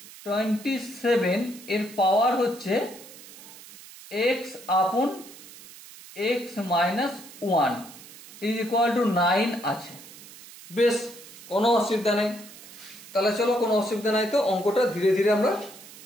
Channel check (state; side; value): noise; right; hiss, 18 dB below the sound